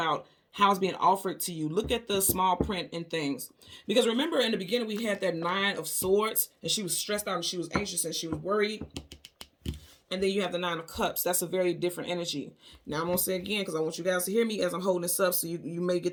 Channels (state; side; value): identical; both; correlation 1.00